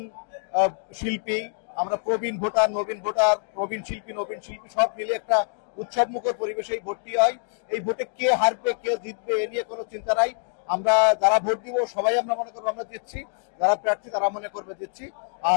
শিল্পী, আমরা প্রবীণ ভোটার, নবীন ভোটার, নবীন শিল্পী সব মিলে একটা উৎসব মুখর পরিবেশে এই ভোটটি হয়। এই ভোটে কে হারবে কে জিতবে এ নিয়ে কোনো চিন্তা নাই। আমরা যারা ভোট দিব সবাই আমরা মনে করবো আমরা দিচ্ছি, যারা প্রার্থী তারা মনে করবে দিচ্ছি।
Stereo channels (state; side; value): silent; right; digital silence